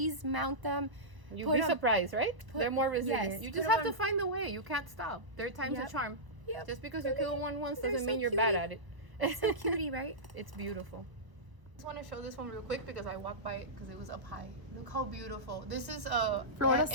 mount them. You'd put be 'em- surprised, right? They're more resilient. yes, You put just 'em have to on- find the way. You can't stop. Their time's Yep. a charm. Yep. Just because you They're kill one once they're doesn't so mean you're bad cutie. at it. It's so cutie, right? It's beautiful. just want to show this one real quick because I walked by it because it was up high. Look how beautiful. This is Florida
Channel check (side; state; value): left; late; 1.0 ms